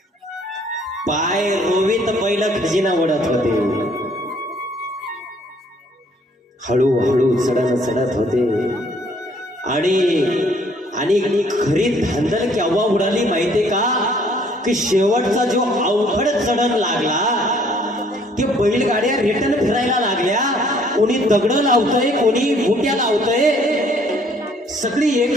पाय रोवीत बैल खजिना वडत होते. हळूहळू चढत होते आणि खरी धांदल केव्हा उडाली माहितीये का, की शेवटचा जो अवघड चढण लागला, ते बैलगाड्या रिटर्न फिरायला लागल्या. कोणी दगड लावतोय, कोणी बुट्या लावतोय, सगळी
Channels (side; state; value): both; normal; correlation 0.61